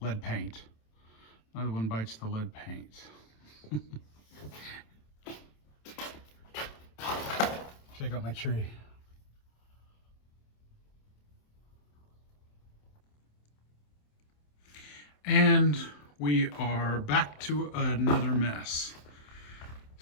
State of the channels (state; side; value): late; right; 27 ms